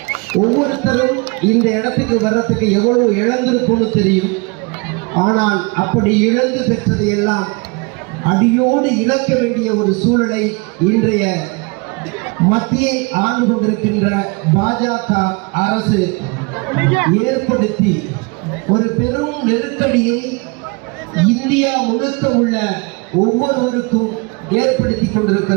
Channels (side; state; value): left; quieter; 29.4 dB